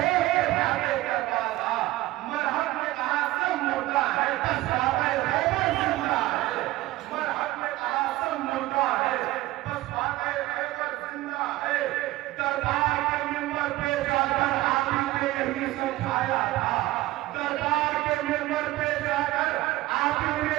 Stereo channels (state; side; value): quieter; left; 17.7 dB